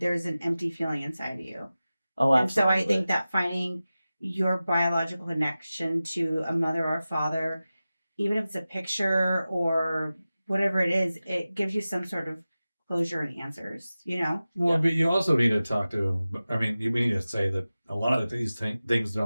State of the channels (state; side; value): inverted; both; correlation -0.96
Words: there's an empty feeling inside of you. Oh, And so absolutely. I think that finding your biological connection to a mother or a father, even if it's a picture or whatever it is, it gives you some sort of closure and answers, you know? Well, Yeah. but you also need to talk to. I mean, you need to say that a lot of these things